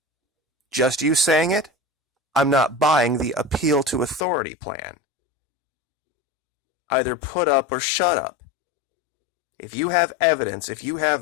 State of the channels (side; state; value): right; drops out; at 4.2 s